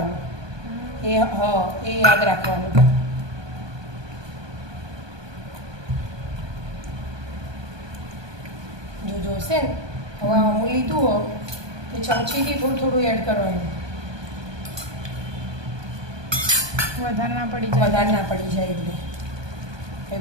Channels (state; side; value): late; left; 1.2 ms